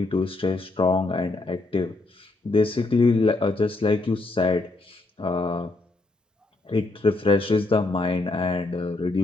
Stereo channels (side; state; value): right; quieter; 3.1 dB